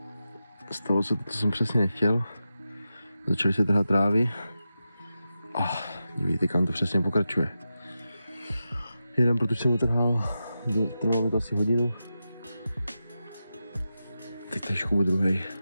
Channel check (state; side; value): inverted; both; correlation -0.91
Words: Stalo se to, co jsem přesně nechtěl. Začaly se trhat trávy. Vidíte, kam to přesně pokračuje. Jeden, protože jsem utrhal, trvalo mi to asi hodinu. Teď tady škoubu druhej.